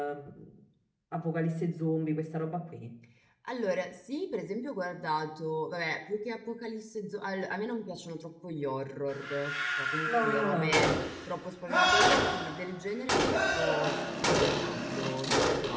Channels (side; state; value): both; identical; correlation 1.00